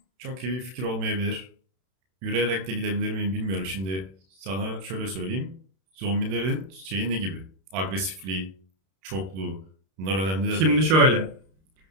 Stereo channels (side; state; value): left; late; 31 ms